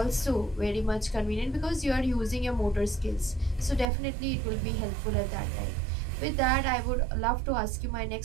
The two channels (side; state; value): left; drops out; at 3.9 s